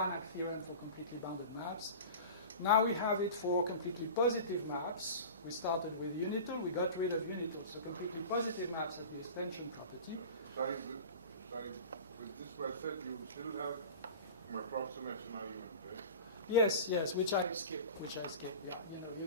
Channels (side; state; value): both; inverted; correlation -0.35